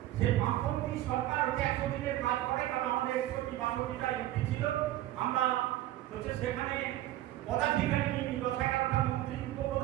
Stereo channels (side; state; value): left; quieter; 14.7 dB